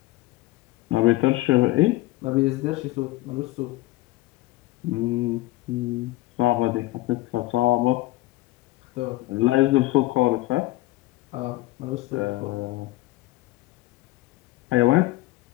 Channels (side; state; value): right; quieter; 18.7 dB